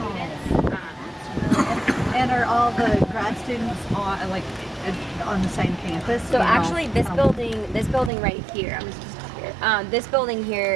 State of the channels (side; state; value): left; drops out; at 8.1 s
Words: And are all the grad students on the same campus? So You know? actually, this building right here, I'm just here. This building